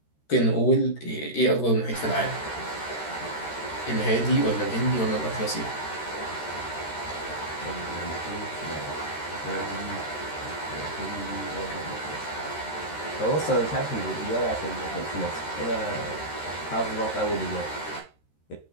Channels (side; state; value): right; late; 13 ms